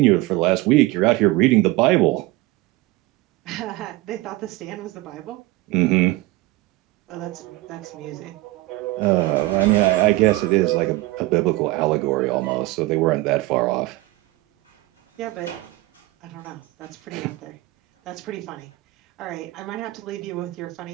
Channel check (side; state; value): left; quieter; 19.3 dB